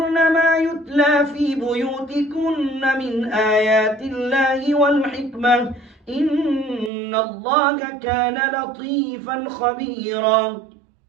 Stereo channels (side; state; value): left; drops out; at 6.9 s